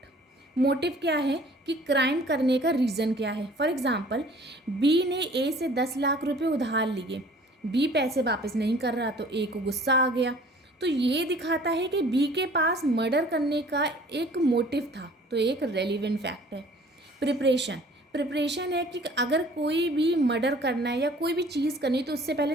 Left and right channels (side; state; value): both; normal; correlation 0.51